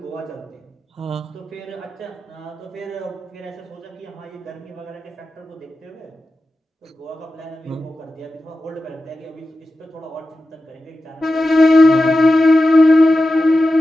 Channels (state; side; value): normal; both; correlation 0.92